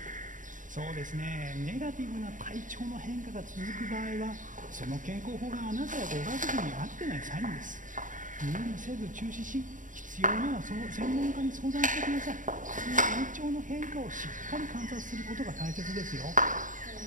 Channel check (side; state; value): left; late; 0.38 ms